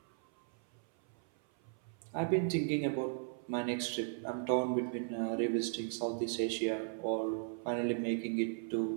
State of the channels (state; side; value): silent; left; 53 dB below the other